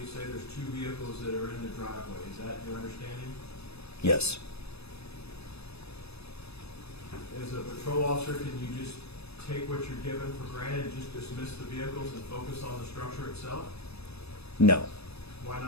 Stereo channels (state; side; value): late; right; 0.79 ms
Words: say there's two vehicles that are in the driveway. Is that your understanding? Yes. As a patrol officer, can you just take what you're given for granted and just dismiss the vehicles and focus on the structure itself? No. Why